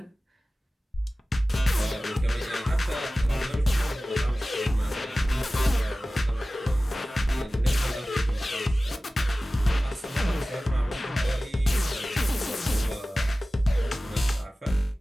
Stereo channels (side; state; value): both; normal; correlation 0.97